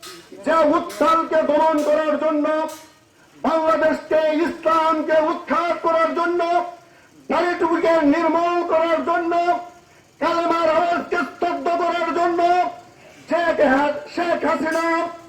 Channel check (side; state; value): both; identical; correlation 1.00